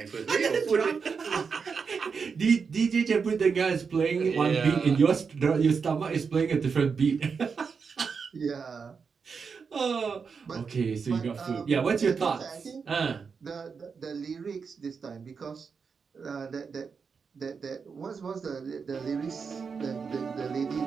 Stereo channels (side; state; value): left; quieter; 5.6 dB